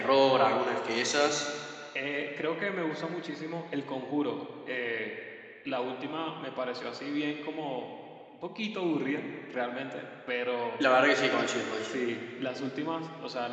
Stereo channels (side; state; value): both; identical; correlation 1.00